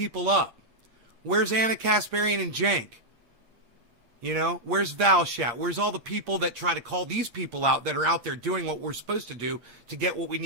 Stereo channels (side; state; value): left; late; 8.6 ms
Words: up. Where's Anna Kasparian and Jank? You know, where's Valshat? Where's all the people that try to call these people out that are out there doing what we're supposed to do to get what we